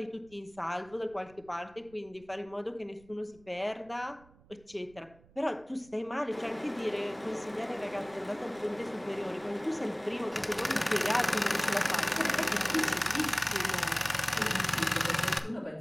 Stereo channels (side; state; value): right; noise; rumble, 26 dB below the sound